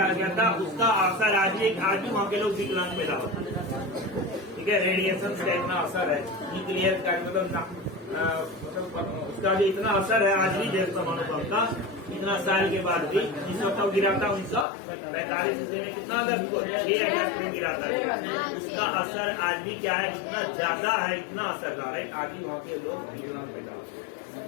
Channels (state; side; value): drops out; right; at 14.7 s